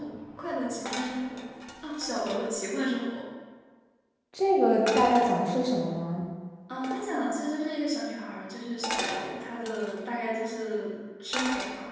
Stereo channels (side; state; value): both; identical; correlation 1.00